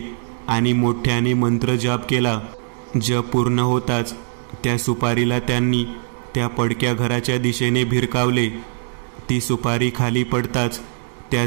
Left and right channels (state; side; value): silent; left; 65 dB below the other